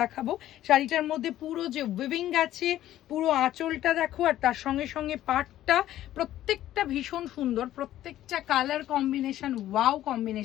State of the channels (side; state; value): right; quieter; 13.3 dB